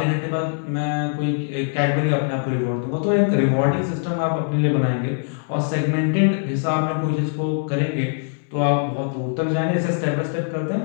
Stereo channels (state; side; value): silent; right; 64 dB below the other